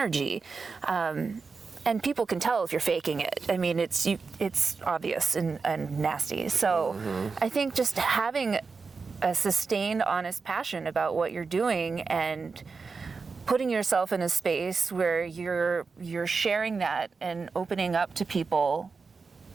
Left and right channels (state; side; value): quieter; left; 4.7 dB